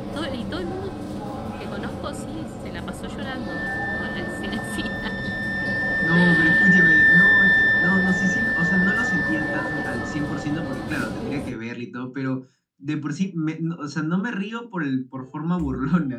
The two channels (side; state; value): both; identical; correlation 1.00